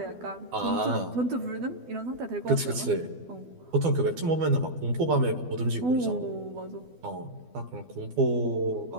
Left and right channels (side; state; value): left; late; 12 ms